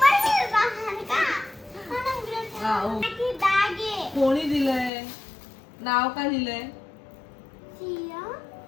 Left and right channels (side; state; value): right; drops out; at 4.9 s